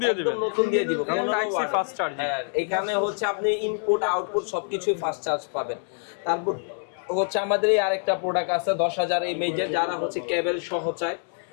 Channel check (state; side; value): silent; right; 61 dB below the other